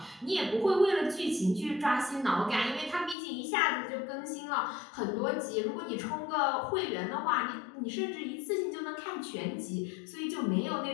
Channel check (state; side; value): drops out; right; at 3.2 s